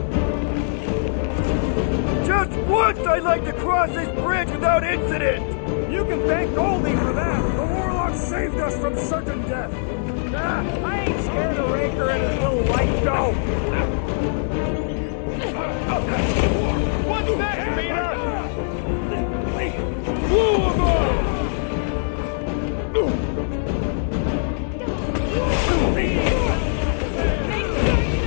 Just once I'd like to cross this bridge without incident! You can thank Goldie for that! The warlock saved us from certain death! I ain't scared of Raker and his little light show! What's next, Peter? Blew him up!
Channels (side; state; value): right; silent; digital silence